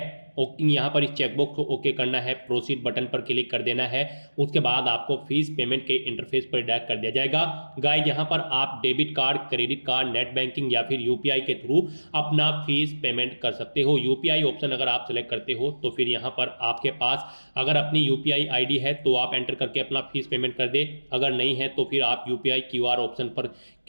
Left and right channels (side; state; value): both; inverted; correlation -1.00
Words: यहाँ पर इस चेकबॉक्स को ओके करना है, प्रोसीड बटन पर क्लिक कर देना है। उसके बाद आपको फीस पेमेंट के इंटरफेस पर डायरेक्ट कर दिया जाएगा। गाइस यहाँ पर आप debit card, credit card, net banking या फिर UPI के थ्रू अपना फीस पेमेंट कर सकते हो। UPI ऑप्शन अगर आप सेलेक्ट करते हो तो फिर यहाँ पर आपके पास अगर अपनी UPI ID है तो आप एंटर करके अपना फीस पेमेंट कर दे, अगर नहीं है तो फिर आप UPI QR ऑप्शन पर